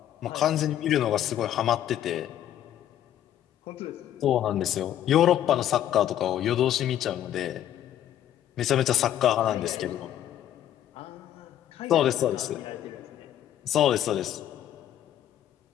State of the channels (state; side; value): quieter; right; 11.4 dB